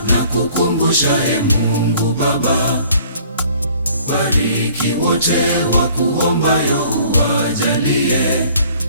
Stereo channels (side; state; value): both; inverted; correlation -0.55